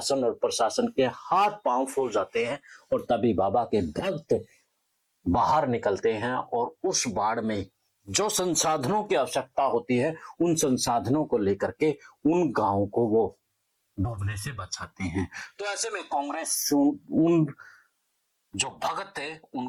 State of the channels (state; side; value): identical; both; correlation 1.00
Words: और प्रशासन के हाथ पांव फूल जाते हैं और तभी बाबा के भक्त बाहर निकलते हैं और उस बाढ़ में जो संसाधनों की आवश्यकता होती है, उन संसाधनों को लेकर के उन गांवों को वो डूबने से बचाते हैं। तो ऐसे में कांग्रेस उन जो भगत है